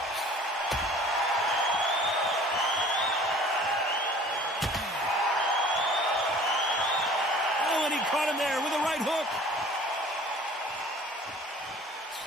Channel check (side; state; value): both; normal; correlation 0.48